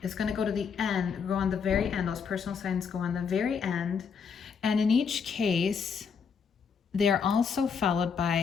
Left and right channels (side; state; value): right; quieter; 6.2 dB